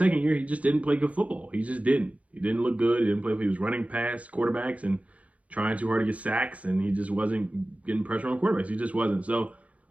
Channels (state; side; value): late; left; 0.066 ms